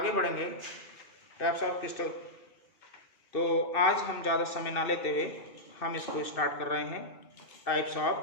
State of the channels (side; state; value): right; late; 2.7 ms